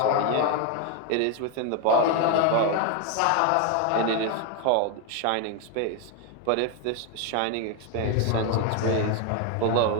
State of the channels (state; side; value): different; both; correlation 0.01